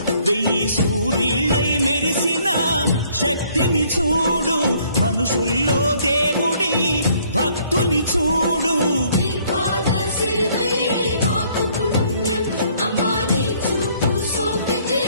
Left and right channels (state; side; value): inverted; both; correlation -0.63